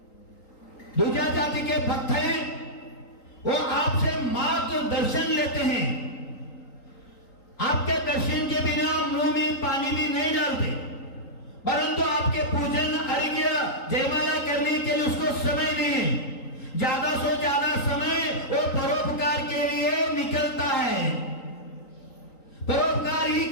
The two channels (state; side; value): late; right; 3.8 ms